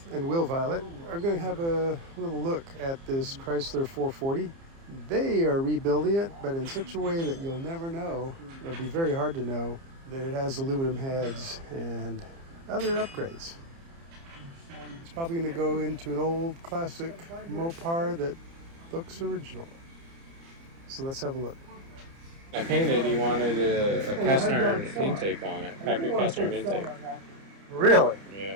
and Will Violett are going to have a little look at this Chrysler 440. They are rebuilding it, but in such a way that you'll never know, it'll be very hard to know, that it has aluminum heads and other upgrades. It's probably going to go into an old classic Mopar that looks original. So let's have a look. I painted, he wanted a cast iron intake on it, factory cast iron intake. Really?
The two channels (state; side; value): late; left; 30 ms